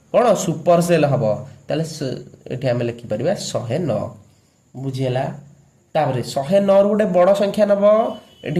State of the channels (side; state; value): both; identical; correlation 1.00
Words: କ'ଣ ସୁପର ସେଲ୍ ହେବ। ତାହେଲେ ଏଠି ଆମେ ଲେଖିପାରିବା 109। ବୁଝିହେଲା? ତାପରେ 109ରୁ ଗୋଟେ ବଡ଼ ସଂଖ୍ୟା ନେବ,